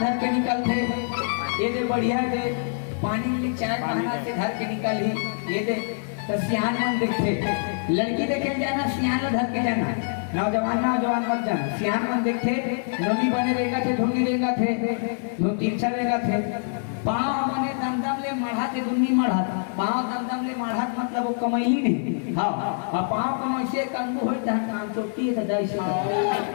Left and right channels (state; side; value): silent; right; digital silence